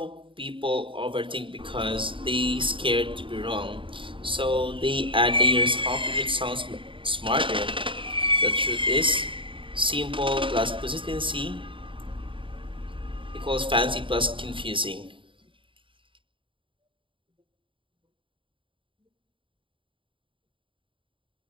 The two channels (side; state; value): left; late; 0.25 ms